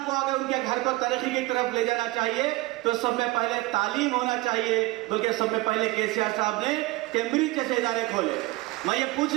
को, अगर उनके घर को तरक्की की तरफ ले जाना चाहिए तो सब में पहले तालीम होना चाहिए, बल्कि सब में पहले केसीआर साहब ने कैम्ब्रिज जैसे इदारे खोले। मैं ये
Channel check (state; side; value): quieter; left; 20.8 dB